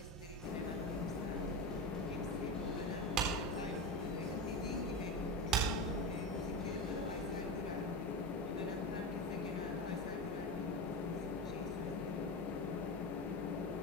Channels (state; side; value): normal; both; correlation 0.20